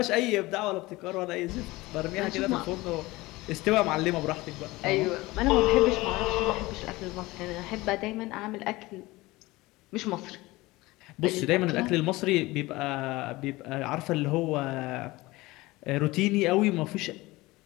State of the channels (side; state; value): right; quieter; 20.5 dB